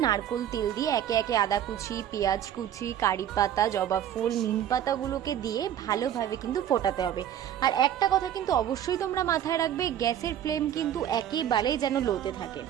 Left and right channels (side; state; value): left; quieter; 10.4 dB